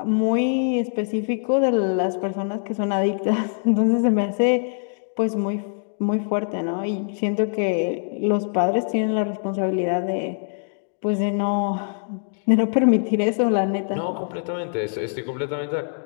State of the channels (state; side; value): silent; right; digital silence